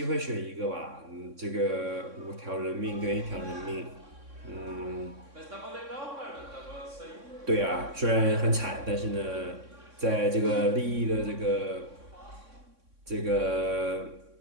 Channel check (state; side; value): late; left; 3.6 ms